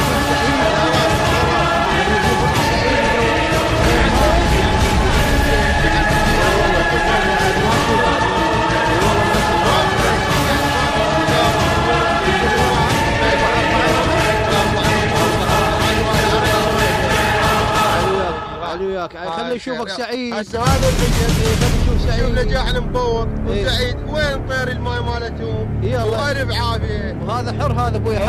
خلي يشوفك سعيد. هسه هذا خلي يشوف سعيد نجاحنا مبوق وسعيد. وين طير الماي مالتهم؟ والله بعافيه. وهذا حر، هذا ابوي حر.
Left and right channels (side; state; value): both; identical; correlation 1.00